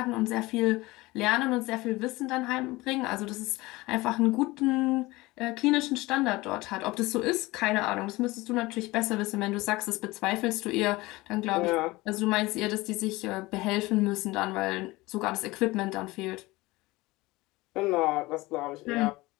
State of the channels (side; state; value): right; quieter; 20.8 dB